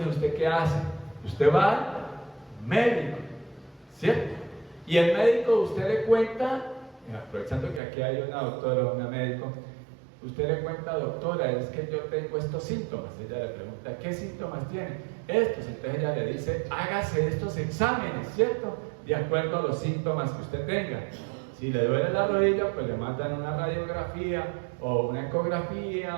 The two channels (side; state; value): left; drops out; at 7.8 s